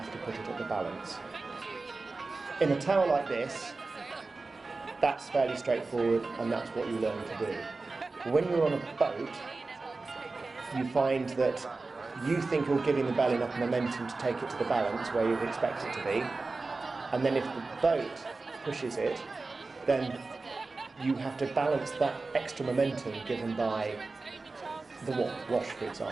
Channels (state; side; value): quieter; left; 3.7 dB